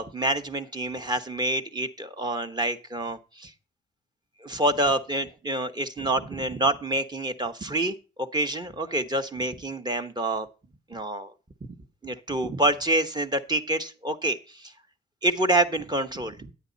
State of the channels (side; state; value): both; normal; correlation 0.06